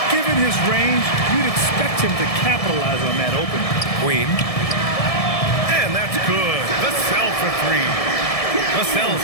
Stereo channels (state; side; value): late; right; 1.7 ms